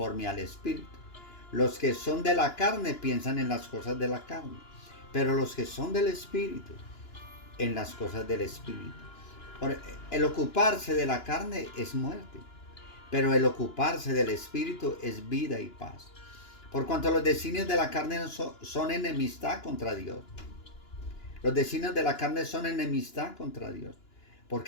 al Espíritu. Los que son de la carne piensan en las cosas de la carne, pero los que son del Espíritu, en las cosas del Espíritu. El ocuparse de la carne es muerte, pero el ocuparse del Espíritu es vida y paz. Por cuanto los designios de la carne son enemistad contra Dios. Los designios de la carne son enemistad contra Dios,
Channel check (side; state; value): right; late; 2.9 ms